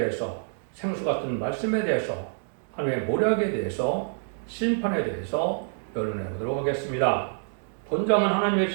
생수 같은 말씀에 대해서, 하나님의 모략에 대해서, 심판에 대해서 변론해 보도록 하겠습니다. 본장은 하나님의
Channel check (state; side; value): silent; left; digital silence